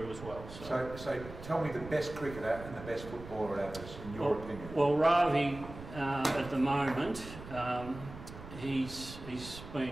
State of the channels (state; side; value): noise; right; rumble, 13 dB below the sound